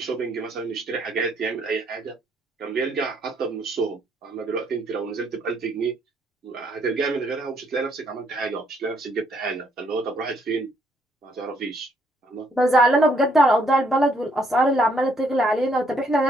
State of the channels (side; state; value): both; normal; correlation 0.69